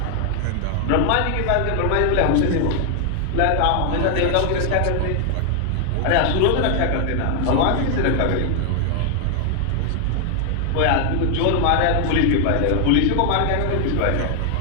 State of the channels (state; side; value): different; both; correlation 0.00